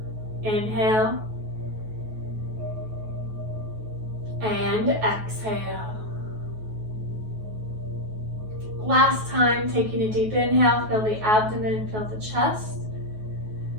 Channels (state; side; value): late; left; 9.3 ms